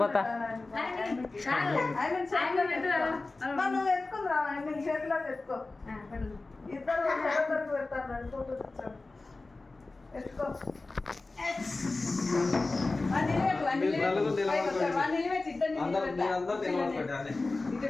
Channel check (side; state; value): right; quieter; 3.4 dB